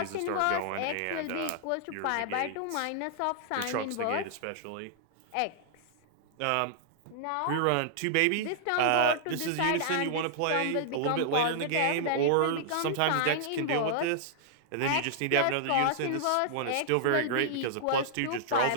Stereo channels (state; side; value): different; both; correlation -0.01